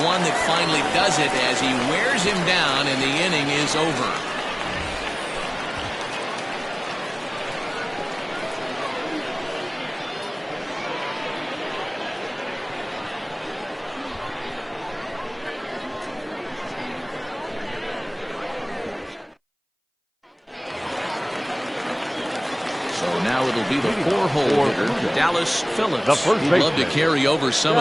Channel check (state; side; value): identical; both; correlation 1.00